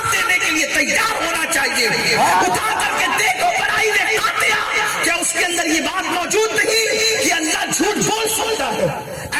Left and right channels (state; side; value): identical; both; correlation 1.00